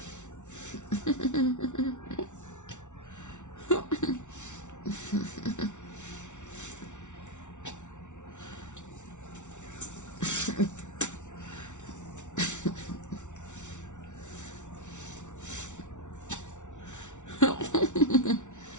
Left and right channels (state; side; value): late; right; 0.85 ms